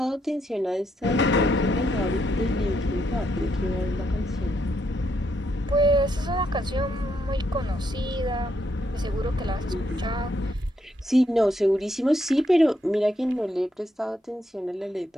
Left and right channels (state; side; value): normal; both; correlation 0.76